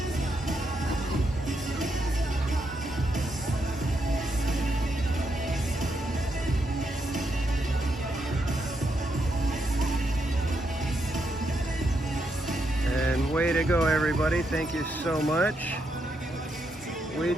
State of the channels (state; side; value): normal; both; correlation 0.80